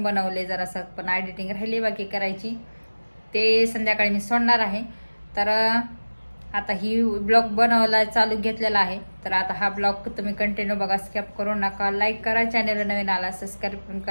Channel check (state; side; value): inverted; both; correlation -1.00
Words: बनवले, जरासं पण एडिटिंग राहिली बाकी करायची, ते संध्याकाळी मी सोडणार आहे. तर आता ही ब्लॉग बनवायला चालू घेतलेला आहे. तर आता हा ब्लॉग तुम्ही कंटिन्यू बघा, स्किप करू नका. लाईक करा, चॅनल नवीन आला सबस्क्राईब पण